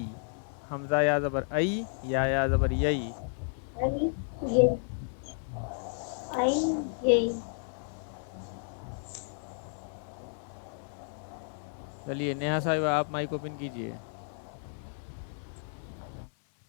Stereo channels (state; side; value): silent; right; 56 dB below the other